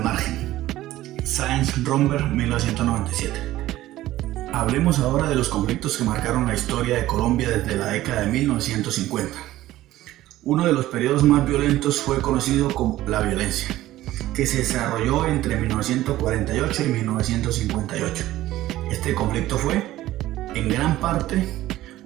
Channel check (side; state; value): left; quieter; 15.3 dB